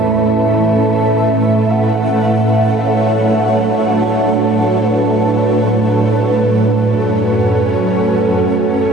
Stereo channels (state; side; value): normal; both; correlation 0.56